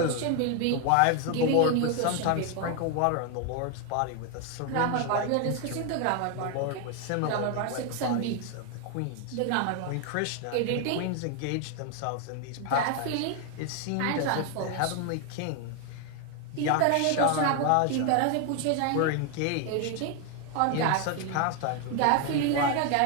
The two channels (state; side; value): different; both; correlation 0.01